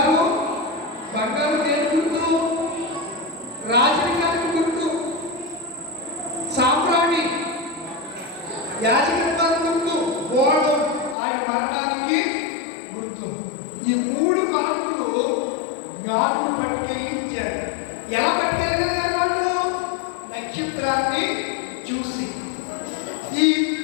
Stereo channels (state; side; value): drops out; right; at 11.2 s